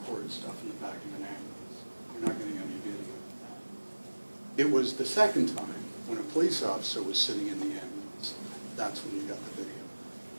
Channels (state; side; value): inverted; both; correlation -1.00